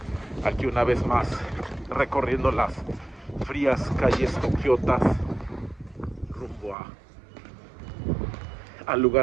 aquí una vez más recorriendo las frías calles tokiotas rumbo al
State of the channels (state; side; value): drops out; left; at 6.8 s